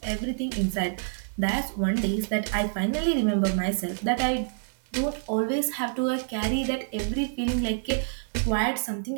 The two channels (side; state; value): left; silent; digital silence